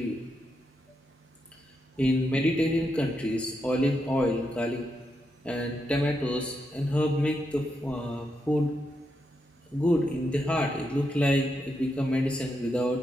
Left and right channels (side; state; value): both; normal; correlation 0.83